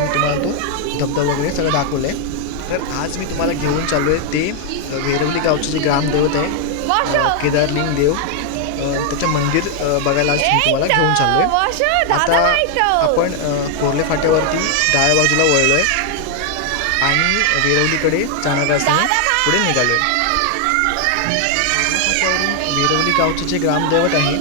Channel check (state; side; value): different; both; correlation 0.00